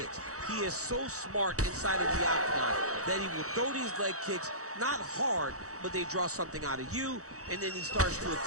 He is so smart inside of the octagon that he will throw these leg kicks, not hard, but they draw something out of you, and then he starts to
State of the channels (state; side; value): late; left; 0.65 ms